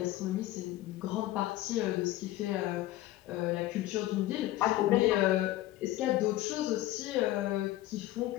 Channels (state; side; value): quieter; right; 15.5 dB